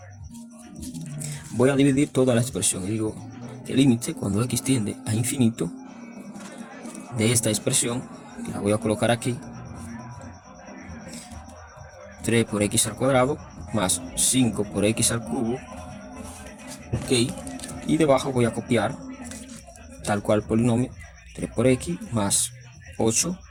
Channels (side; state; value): both; identical; correlation 1.00